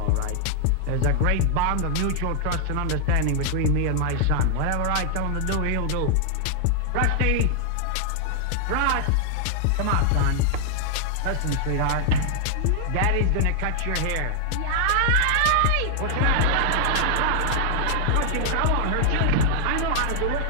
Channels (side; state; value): both; different; correlation 0.00